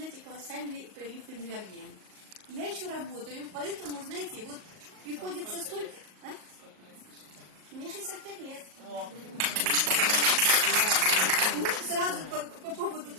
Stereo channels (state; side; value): late; left; 38 ms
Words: колоссальный прилив энергии. Я еще работаю, поэтому, знаете, вот приходится столько... А? Мне 65 лет. Ну, сразу по поводу